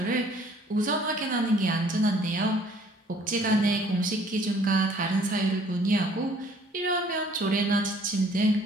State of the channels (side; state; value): both; normal; correlation 0.57